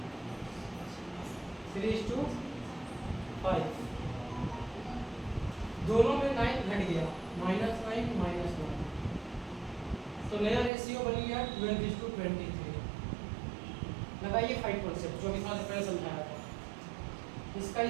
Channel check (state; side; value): drops out; left; at 10.7 s